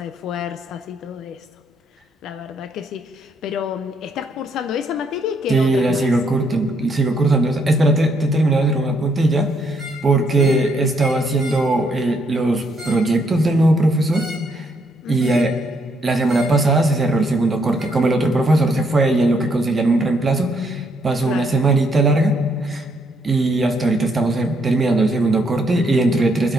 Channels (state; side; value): normal; both; correlation 0.73